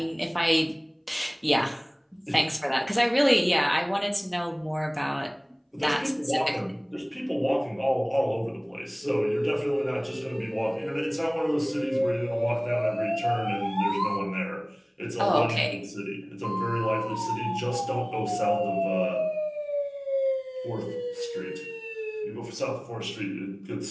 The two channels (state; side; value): identical; both; correlation 1.00